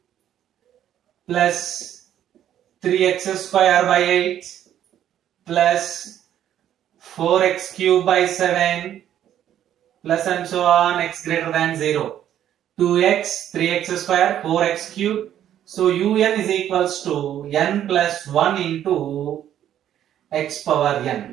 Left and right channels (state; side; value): quieter; left; 10.9 dB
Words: plus 3x square by 8 plus 4x cube by 7 plus and so on x greater than 0. 2x, 3x square, 4x cube. So un is equals to n plus 1 into x power